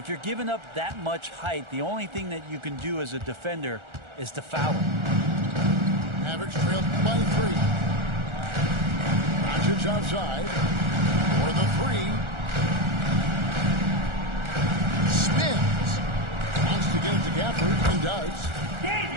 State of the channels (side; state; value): left; late; 1.4 ms